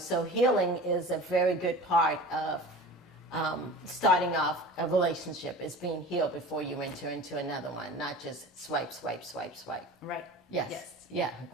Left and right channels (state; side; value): normal; both; correlation 0.37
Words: healing is a very good part of starting off a relationship, is being healed before you enter into another one, not just swipe, swipe, swipe, swipe. Right. Yes. Yeah,